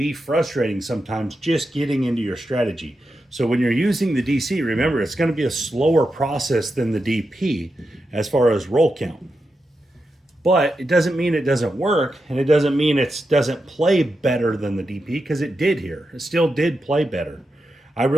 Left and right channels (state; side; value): normal; both; correlation 0.88